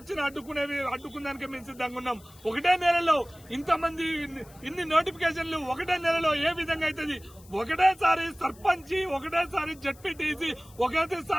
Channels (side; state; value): left; noise; hiss, 24 dB below the sound